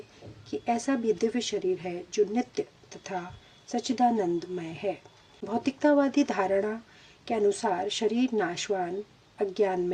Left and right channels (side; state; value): both; identical; correlation 1.00